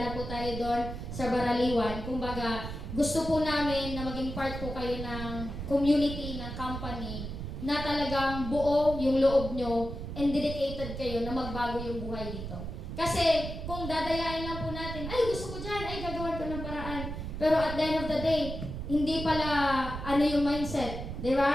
na po tayo dun sa baraliwan. Kumbaga, gusto po namin na maging part po kayo ng community, ng company, na talagang buo yung loob nyo and dedicated kayo na magbago yung buhay dito. Kasi, kung dadayain lang po natin, ay, gusto ko dyan, ay, gagawan ko ng paraan. Pero at the end of the day, hindi pala yung mindset. Di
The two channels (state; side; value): noise; right; rumble, 7 dB below the sound